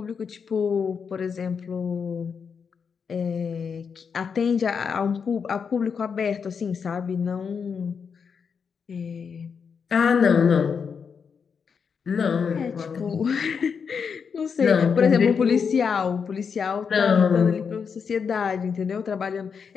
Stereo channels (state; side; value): quieter; right; 6.2 dB